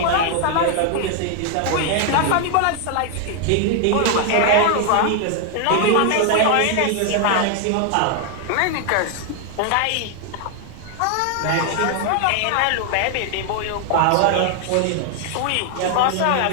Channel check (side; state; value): both; different; correlation 0.00